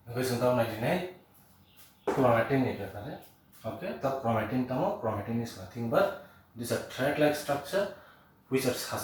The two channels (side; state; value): both; identical; correlation 1.00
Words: Because sometimes I deny chromatin is there. Okay, the chromatin is nothing but this a thread-like structure which are